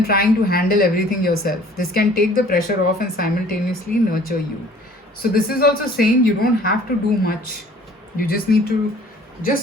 trying to handle everything yourself. This can take the pressure off and simultaneously nurture you. So this is also saying you don't have to do much. You just need to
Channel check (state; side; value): normal; both; correlation 0.52